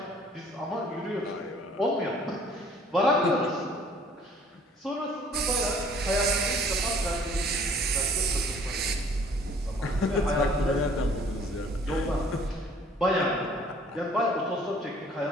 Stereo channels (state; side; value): normal; both; correlation 0.55